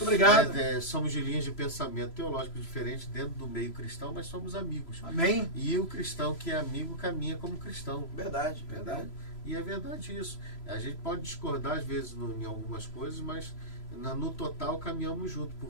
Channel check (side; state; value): right; late; 3.0 ms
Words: obrigado. Somos de linhas de pensamento teológico diferentes dentro do meio cristão, mas somos amigos. Amém. E o cristão que é amigo caminha como cristão. Verdade, verdade. E é verdade isso. A gente pode discordar às vezes em algumas coisas, mas no total caminhamos junto,